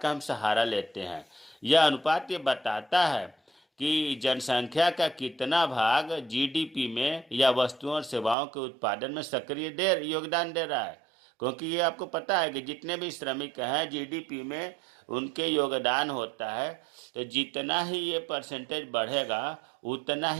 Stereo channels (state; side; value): drops out; left; at 8.3 s